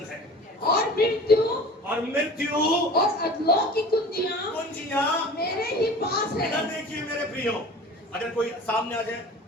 है। और मृत्यु और अधोलोक की कुंजियां मेरे ही पास है। इधर देखिए मेरे प्रियो, अगर कोई सामने आ जाए,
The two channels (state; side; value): normal; both; correlation 0.39